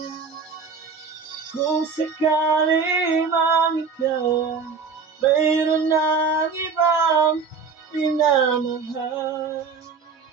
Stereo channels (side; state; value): left; quieter; 5.2 dB